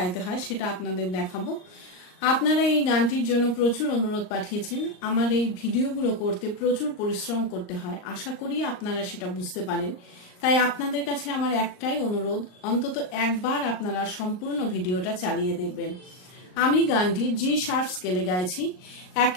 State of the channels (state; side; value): late; right; 38 ms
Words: হয় সেটা আপনাদের দেখাবো। আপনারা এই গানটির জন্য প্রচুর অনুরোধ পাঠিয়েছেন। আমার এই ভিডিওগুলো করতে প্রচুর পরিশ্রম করতে হয়, আশা করি আপনারা সেটা বুঝতে পারেন। তাই আপনাদের কাছে আমার একটাই অনুরোধ, অন্তত একবার আপনারা সম্পূর্ণ ভিডিওটা চালিয়ে দেখবেন। আমি গানটি জি শার্প স্কেলে গাইছি।